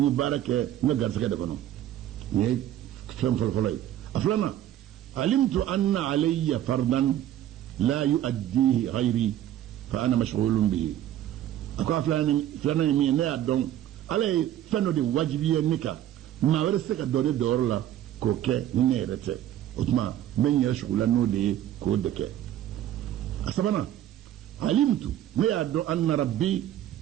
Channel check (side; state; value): left; quieter; 12.0 dB